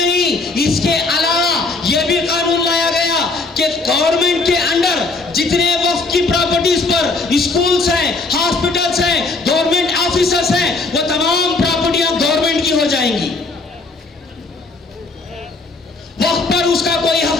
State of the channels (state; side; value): quieter; right; 3.6 dB